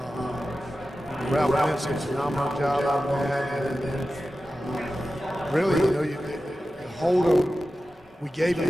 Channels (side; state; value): both; normal; correlation 0.94